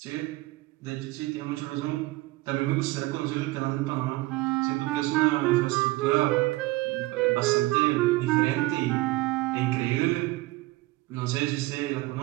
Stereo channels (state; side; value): quieter; left; 20.2 dB